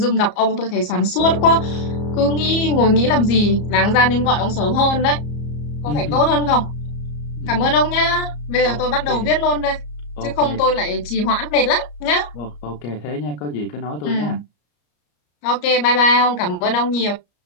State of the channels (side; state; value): right; late; 34 ms